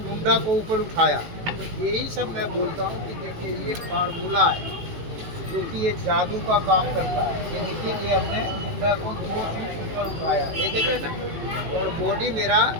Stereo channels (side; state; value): left; late; 18 ms